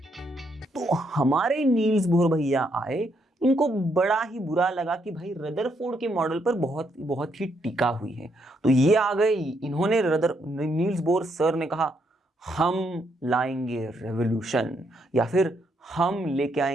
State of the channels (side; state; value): both; normal; correlation 0.75